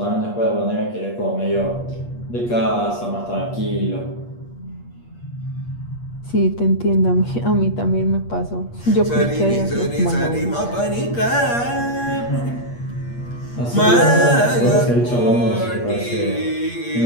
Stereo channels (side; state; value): right; late; 8.4 ms